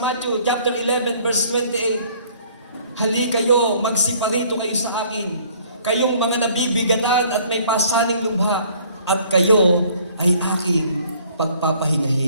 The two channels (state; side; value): inverted; both; correlation -0.58